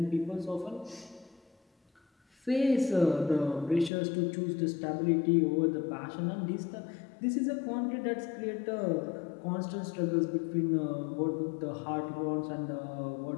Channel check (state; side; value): drops out; right; at 3.9 s